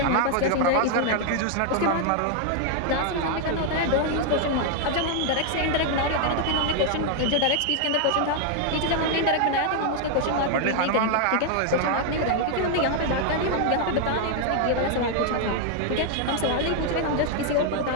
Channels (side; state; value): both; different; correlation 0.00